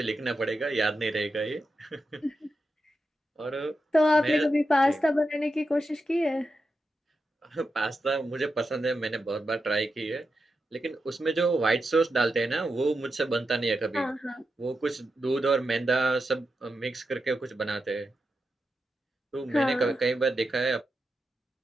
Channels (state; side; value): normal; both; correlation 0.88